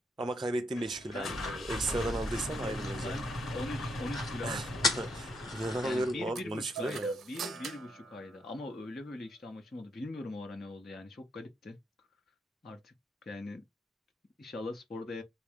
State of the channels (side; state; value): both; normal; correlation 0.76